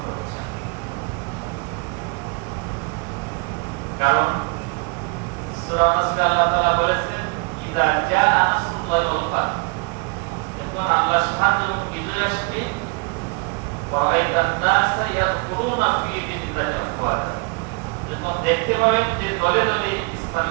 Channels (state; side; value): quieter; left; 31.3 dB